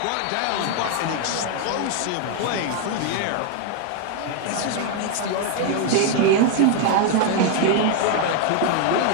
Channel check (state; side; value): different; both; correlation 0.00